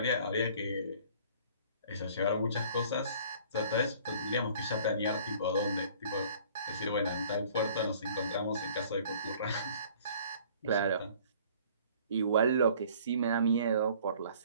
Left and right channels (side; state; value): both; inverted; correlation -0.53